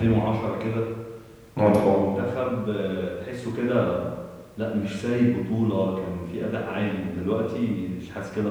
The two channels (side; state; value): both; identical; correlation 1.00